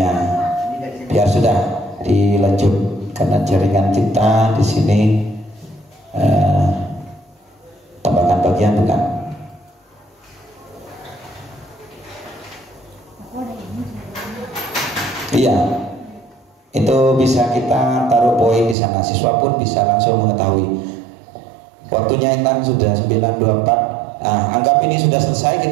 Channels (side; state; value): left; drops out; at 18.8 s